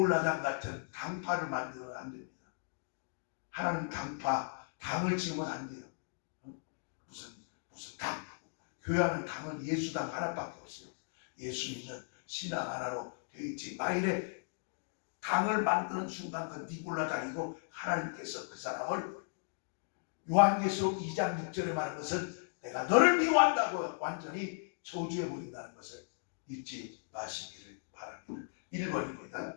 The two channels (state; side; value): silent; right; digital silence